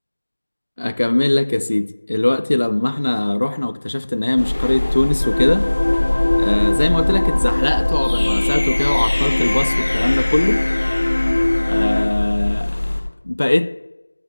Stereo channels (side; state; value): both; inverted; correlation -1.00